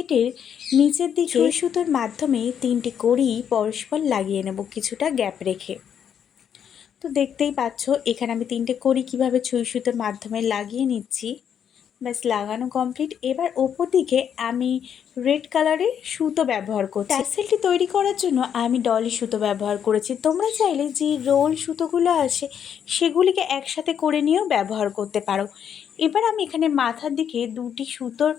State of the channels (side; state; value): right; quieter; 8.5 dB